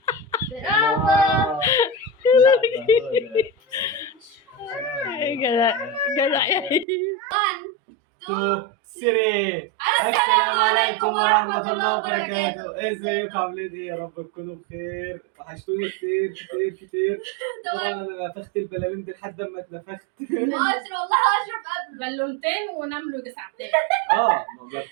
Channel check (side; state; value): left; drops out; at 6.9 s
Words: برافو. جدع جدع يا هيم. 2 3. السلام عليكم ورحمة الله وبركاته. ازيكم عاملين ايه؟ يا رب تكونوا بخير. وحشتوني كتير كتير كتير. طبعا انا نفخت البلالين دي لحد ما اتنفخت. اشرف والله اشرف قبله بالونتين ونام له ساعتين. ما